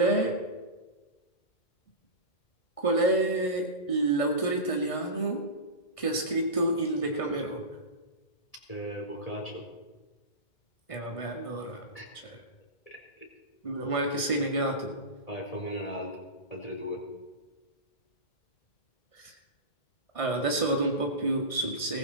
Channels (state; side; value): late; right; 1.5 ms